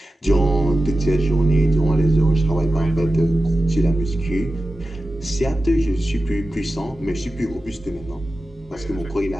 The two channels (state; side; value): normal; both; correlation 0.93